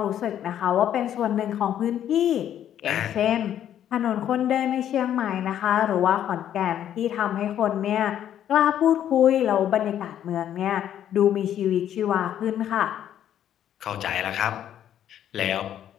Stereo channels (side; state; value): right; quieter; 10.5 dB